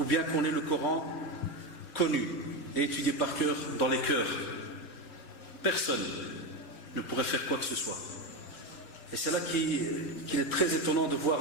bien qu'on ait le Coran connu et étudié par cœur dans les cœurs, personne ne pourrait faire quoi que ce soit. Et c'est là qu'il est très étonnant de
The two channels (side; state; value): right; late; 3.3 ms